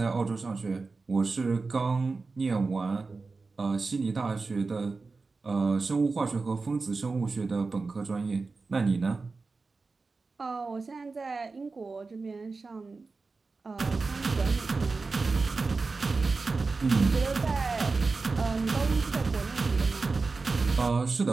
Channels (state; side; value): quieter; left; 4.0 dB